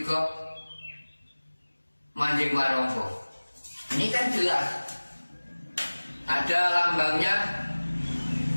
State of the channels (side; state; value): both; inverted; correlation -1.00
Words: manjing warangka? Ini kan jelas. Ada lambangnya